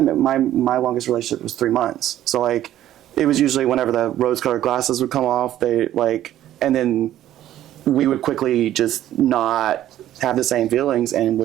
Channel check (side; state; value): left; quieter; 12.7 dB